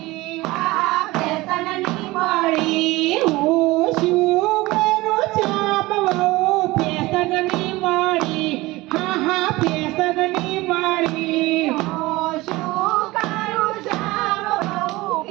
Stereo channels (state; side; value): quieter; left; 20.2 dB